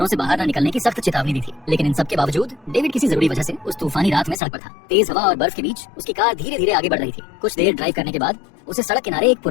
से बाहर न निकलने की सख्त चेतावनी दी थी, लेकिन इन सब के बावजूद डेविड किसी जरूरी वजह से उस तूफानी रात में सड़क पर था। तेज हवा और बर्फ के बीच उसकी कार धीरे धीरे आगे बढ़ रही थी। कुछ देर ड्राइव करने के बाद उसे सड़क किनारे एक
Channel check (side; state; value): right; drops out; at 4.4 s